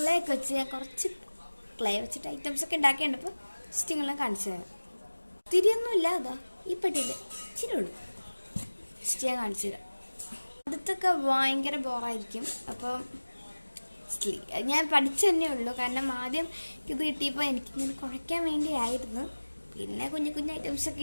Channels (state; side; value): inverted; both; correlation -1.00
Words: ഒക്കെ വെച്ച് ഞാൻ കുറച്ച് ക്ലേ വെച്ചിട്ട് ഐറ്റംസ് ഒക്കെ ഉണ്ടാക്കിയുണ്ട്. അപ്പോൾ സ്റ്റിങ്ങളെല്ലാം കാണിച്ചു തരാം. തിരിയൊന്നുമില്ല, അതാ ഈ പെട്ടിയിൽ ഇച്ചിരി ഉള്ളൂ. ജസ്റ്റ് ഞാൻ കാണിച്ചു തരാം. അടുത്തൊക്കെ ഭയങ്കര ബോറായിരിക്കും. അപ്പം ഞാൻ പഠിച്ചു തന്നെ ഉള്ളൂ. കാരണം ആദ്യം ഇത് കിട്ടിയപ്പോൾ എനിക്കിങ്ങനെ കുഴയ്ക്കാൻ വേണ്ടിയായിരുന്നു. പിന്നെ കുഞ്ഞു കുഞ്ഞു ഐറ്റംസൊക്കെ